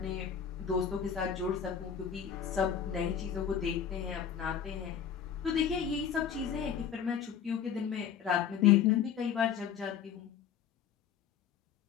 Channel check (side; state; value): right; quieter; 8.2 dB